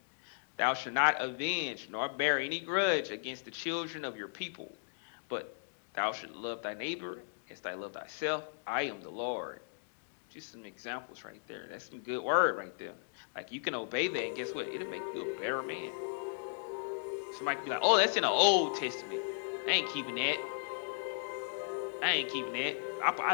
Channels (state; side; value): silent; right; digital silence